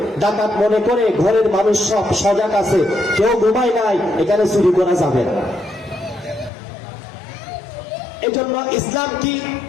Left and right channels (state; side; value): drops out; right; at 6.5 s